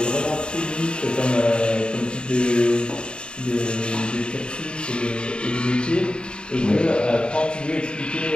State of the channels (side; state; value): right; late; 0.052 ms